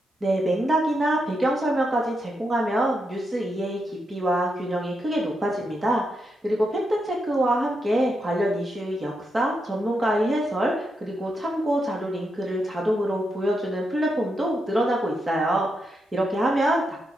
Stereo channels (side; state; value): both; normal; correlation 0.84